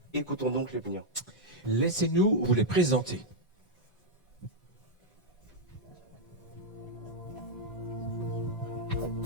Écoutons donc les plaignants. Laissez-nous vous les présenter.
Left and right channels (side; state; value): both; normal; correlation -0.02